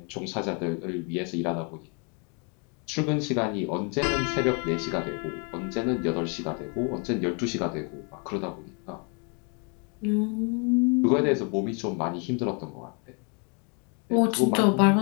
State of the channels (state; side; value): quieter; right; 36.3 dB